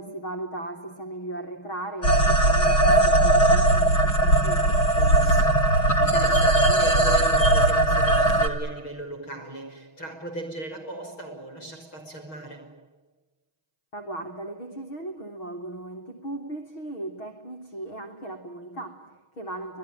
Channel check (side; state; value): right; late; 6.3 ms